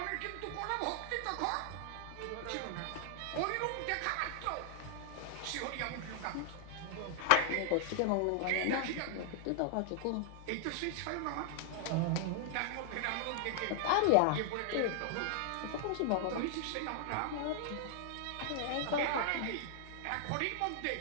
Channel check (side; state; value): both; different; correlation 0.00